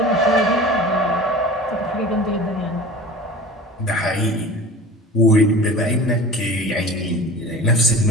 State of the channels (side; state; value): both; normal; correlation 0.38